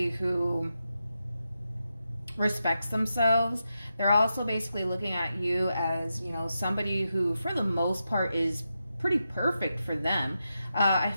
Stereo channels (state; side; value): inverted; both; correlation -0.88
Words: who respects themselves. They're also basically looking at you as, you know, somebody who, for the most part, is pretty perfect for them. I